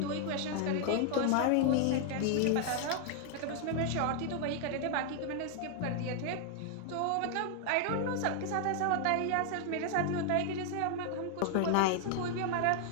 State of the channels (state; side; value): different; both; correlation 0.00